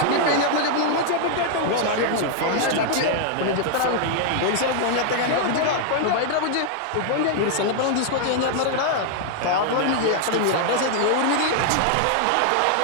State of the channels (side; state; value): both; different; correlation 0.00